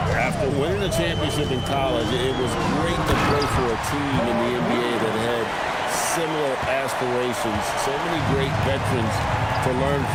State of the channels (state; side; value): identical; both; correlation 1.00